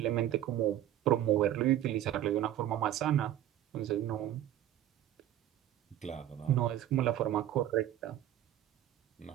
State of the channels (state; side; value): quieter; left; 12.3 dB